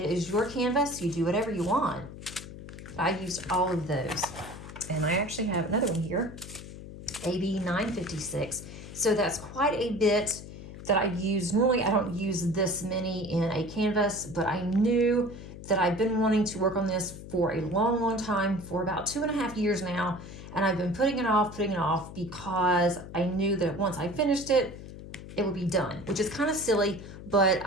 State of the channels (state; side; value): noise; left; hum, 13 dB below the sound